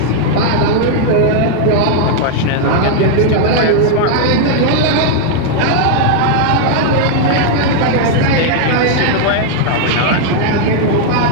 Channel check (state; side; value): different; both; correlation 0.00